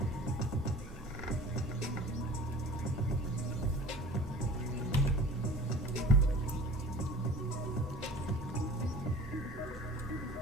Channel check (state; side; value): normal; both; correlation 0.43